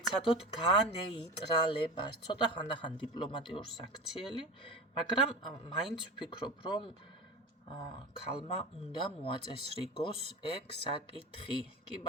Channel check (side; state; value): both; normal; correlation 0.28